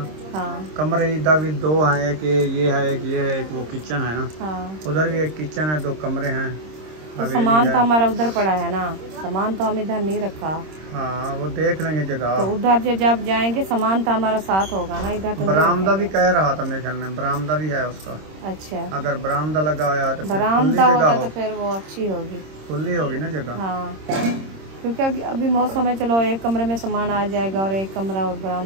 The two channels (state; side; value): late; left; 26 ms